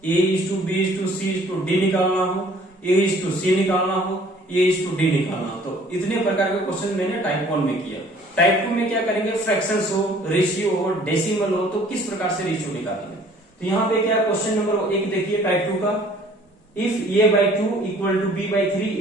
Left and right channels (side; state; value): both; normal; correlation 0.55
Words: A:B:C:D निकालना हो, A:C निकालना हो, A:D निकालना हो। तो इतने प्रकार के क्वेश्चन मैंने टाइप 1 में किया। टाइप 2 में क्या करेंगे, फ्रैक्शंस हो, रेशियो हो, डेसिमल हो, तो किस प्रकार से रेशियो निकालेंगे। तो यहाँ पे क्या क्वेश्चन नंबर 1 देखिए टाइप 2 का, if A/2 equal to B/3